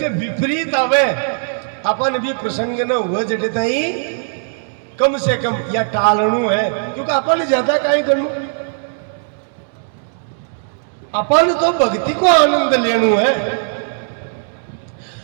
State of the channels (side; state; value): left; silent; digital silence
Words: विपरीत आवे, अपन भी प्रसंग न हुआ जटे ताई कम से कम या टालणु है, क्योंकि अपन ज्यादा काई करनु, अपन तो भक्ति को आनंद लेनु है।